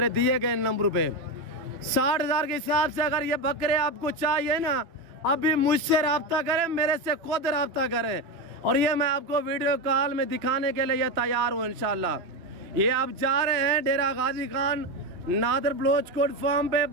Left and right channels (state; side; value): late; left; 2.7 ms